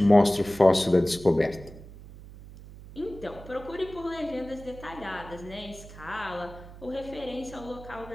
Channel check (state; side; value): noise; right; hum, 17 dB below the sound